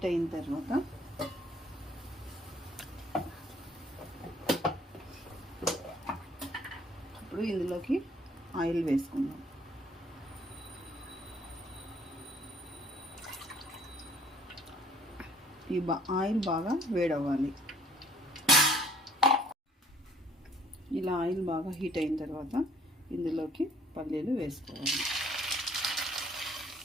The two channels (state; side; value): normal; both; correlation 0.58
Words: అయిన తర్వాత ఇప్పుడు ఇందులోకి ఆయిల్ వేసుకుందాం. ఈ ఆయిల్ బాగా వేడవ్వాలి. ఇలా ఆయిల్ బాగా హీట్ అయిన తర్వాత ఇందులోకి పల్లీలు వేసుకోవాలి.